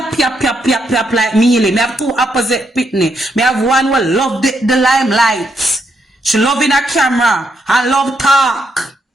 yap yap yap yap like me. Me have two opposite pitney. Me have one who love the limelight. She love in her camera and love talk.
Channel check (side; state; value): both; normal; correlation 0.78